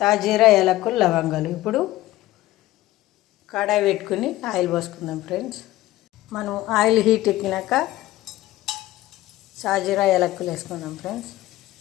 యాలకులు, లవంగాలు. ఇప్పుడు కడాయి పెట్టుకుని ఆయిల్ పోసుకుందాం ఫ్రెండ్స్. మనం ఆయిల్ హీట్ ఎక్కినాక సాజీరా, యాలకులు వేసుకుందాం ఫ్రెండ్స్.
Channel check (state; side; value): quieter; right; 16.3 dB